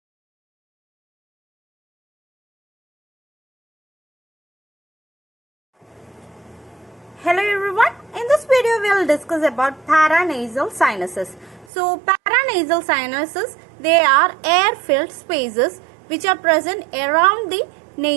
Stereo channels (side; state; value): left; drops out; at 11.7 s